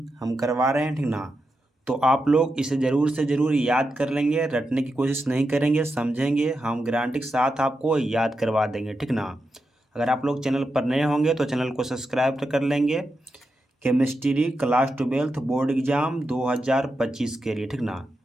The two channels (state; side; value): normal; both; correlation 0.87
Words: हम करवा रहे हैं, ठीक ना। तो आप लोग इसे ज़रूर से ज़रूर याद कर लेंगे, रटने की कोशिश नहीं करेंगे, समझेंगे, हम गारंटी के साथ आपको याद करवा देंगे, ठीक ना। अगर आप लोग चैनल पर नए होंगे तो चैनल को सब्सक्राइब कर लेंगे। Chemistry class 12th board exam 2025 के लिए, ठीक ना।